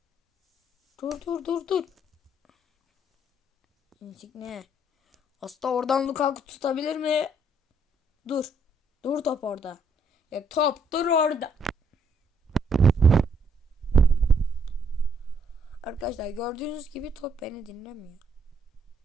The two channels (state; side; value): normal; both; correlation 0.70